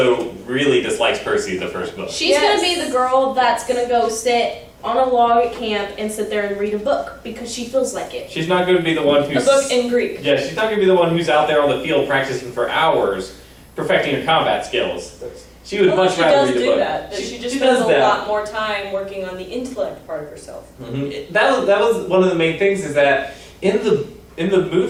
really dislikes Percy in the first book. She's Yes. gonna be the girl that's gonna go sit on a log at camp and sit there and read a book because she feels like it. She's not going to be the one A who's... book in Greek. Yeah, she's not going to be the one who's out there on the field practicing for hours, perfecting her combat skills. She would Although much she rather does read a do book. that. She just she spends does a that. lot more time working on the intellect part of herself. Mhm. That was one of the main things is that in the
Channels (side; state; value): both; identical; correlation 1.00